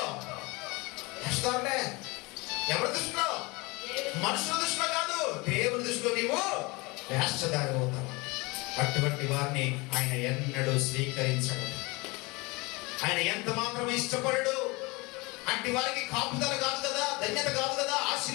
వేషధారులే. ఎవరి దృష్టిలో? మనుషుల దృష్టిలో కాదు, దేవుని దృష్టిలో నీవు వేషధారి అవుతావు. అటువంటి వారిని ఆయన ఎన్నడూ స్వీకరించడు. ఆయన ఎంత మాత్రం ఇష్టపడడు. అట్టి వారికి కాపుదల కాదు కదా, ధన్యత కాదు కదా,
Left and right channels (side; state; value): right; quieter; 25.1 dB